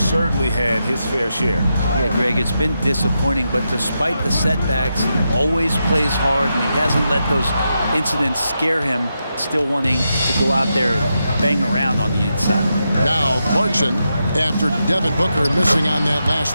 had his fair share. Yeah, Greg, it's been disappointing, but despite the setbacks, he always plays hard, and he hasn't let those incidents scare him, still wanting to go out there and bang around on the inside. Now Clarkson, after Devin Booker missing on that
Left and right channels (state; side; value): inverted; both; correlation -0.86